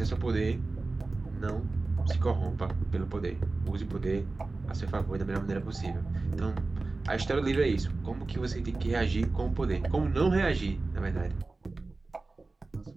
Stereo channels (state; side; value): quieter; left; 3.5 dB